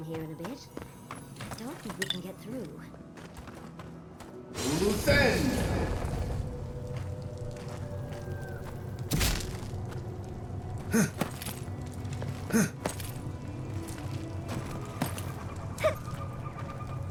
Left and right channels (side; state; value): both; identical; correlation 1.00